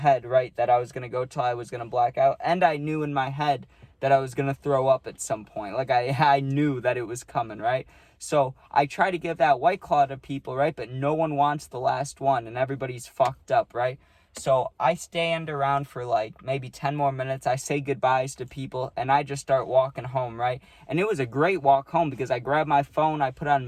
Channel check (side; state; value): both; identical; correlation 1.00